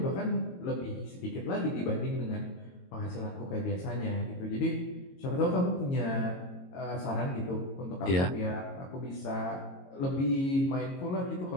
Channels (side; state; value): right; late; 22 ms